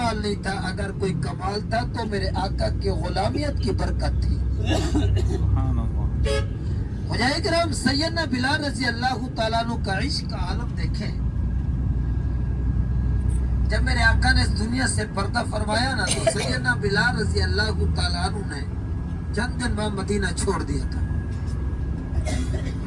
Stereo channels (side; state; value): both; identical; correlation 1.00